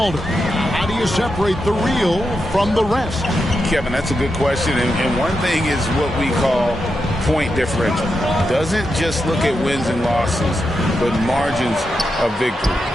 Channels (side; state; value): both; normal; correlation 0.86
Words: How do you separate the real from the rest? Kevin, that's a good question. And one thing is what we call point differential. Doesn't just look at wins and losses, but margins of victory.